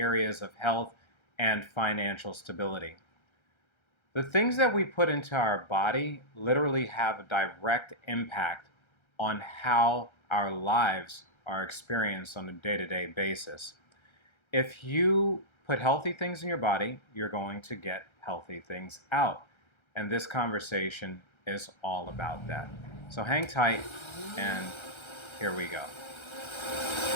of health and financial stability. The things that we put into our body literally have a direct impact on how our lives are experienced on a day-to-day basis. If you put healthy things in your body, you're going to get healthy things out. And this conversation is all about that. So hang tight, and here we go.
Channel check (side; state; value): right; late; 1.3 ms